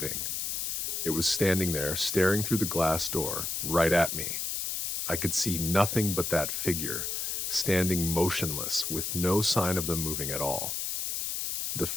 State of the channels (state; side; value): noise; left; hiss, 1 dB below the sound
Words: It was standing there, staring through the glass door, right at me. I could see nothing but that figure, standing motionless, with no sign of them moving at all. The